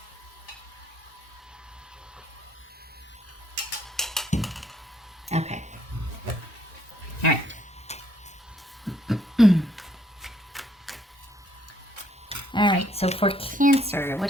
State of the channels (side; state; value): both; normal; correlation 0.67